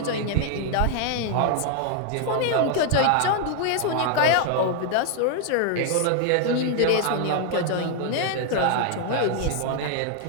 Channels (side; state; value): both; different; correlation 0.00